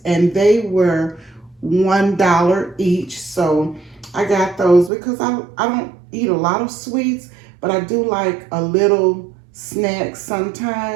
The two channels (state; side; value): drops out; left; at 4.9 s